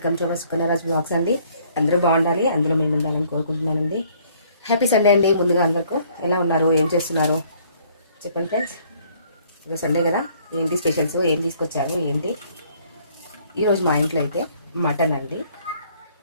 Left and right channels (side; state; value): both; inverted; correlation -0.62